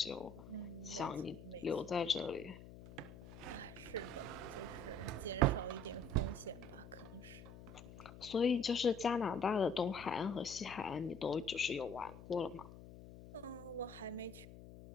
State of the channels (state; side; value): noise; left; hum, 15 dB below the sound